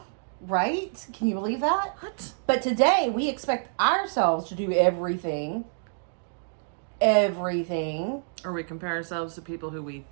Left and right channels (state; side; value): silent; left; digital silence